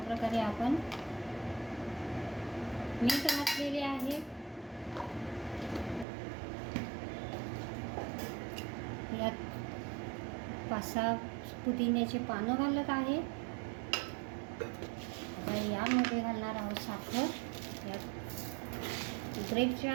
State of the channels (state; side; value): drops out; left; at 6.1 s